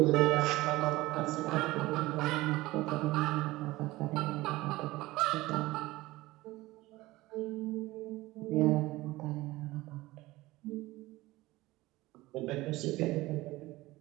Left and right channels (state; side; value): quieter; left; 19.0 dB